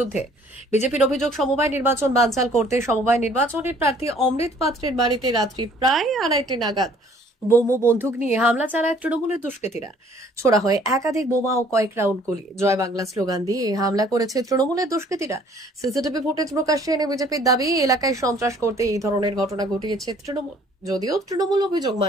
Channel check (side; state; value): both; normal; correlation 0.57